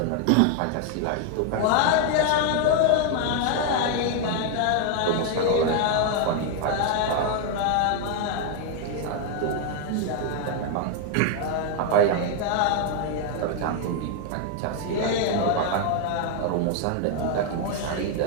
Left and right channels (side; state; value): both; different; correlation 0.00